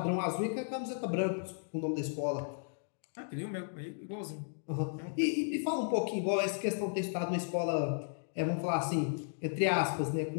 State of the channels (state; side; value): silent; right; digital silence